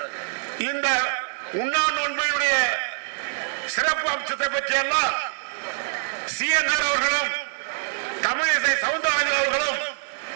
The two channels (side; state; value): left; silent; digital silence